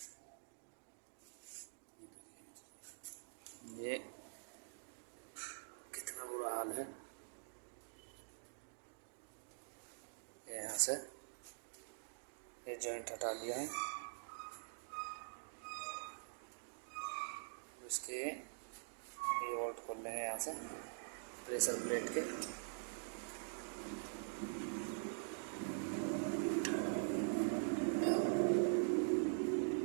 ये कितना बुरा हाल है। ये यहाँ से ये जॉइंट हटा दिया है। इसके ये बोल्ट खोल लेंगे यहाँ से प्रेशर प्लेट के।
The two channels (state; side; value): silent; left; digital silence